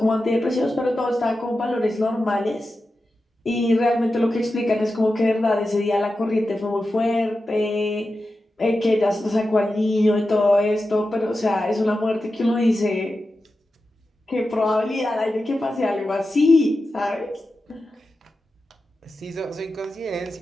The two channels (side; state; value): both; normal; correlation 0.91